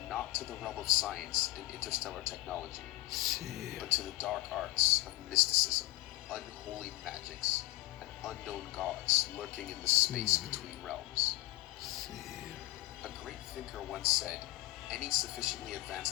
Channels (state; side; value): quieter; right; 18.9 dB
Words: not to the realm of science and interstellar technology, but to the dark arts of mysticism, unholy magics, and unknown gods lurking in the space between realms. A great thinker once said, any sufficiently